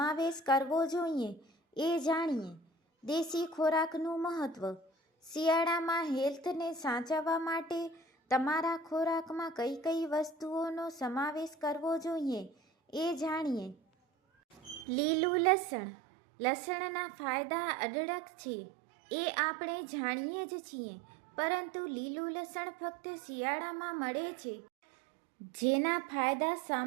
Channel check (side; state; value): left; drops out; at 14.9 s